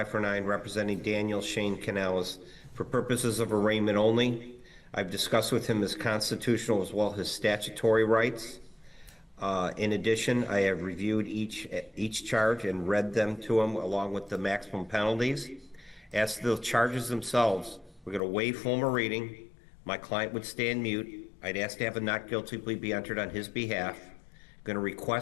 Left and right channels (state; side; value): drops out; right; at 18.2 s